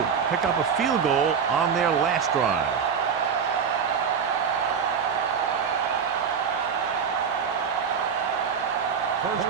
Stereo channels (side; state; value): left; quieter; 6.7 dB